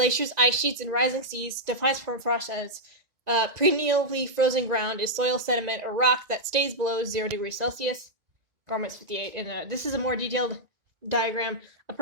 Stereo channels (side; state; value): left; late; 1.9 ms